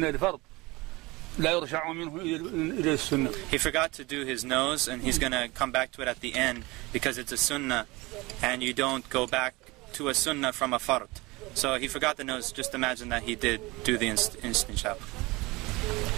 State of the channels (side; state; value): left; quieter; 22.9 dB